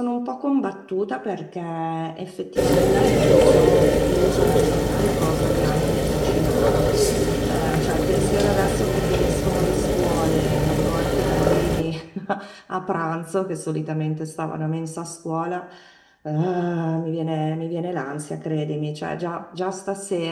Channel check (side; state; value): both; identical; correlation 1.00